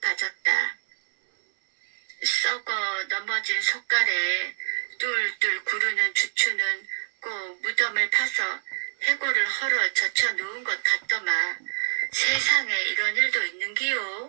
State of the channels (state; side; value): silent; left; 61 dB below the other